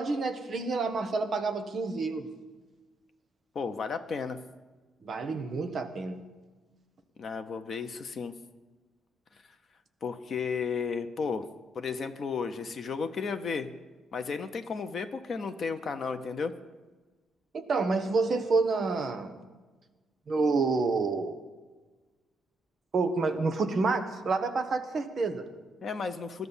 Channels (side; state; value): both; normal; correlation 0.76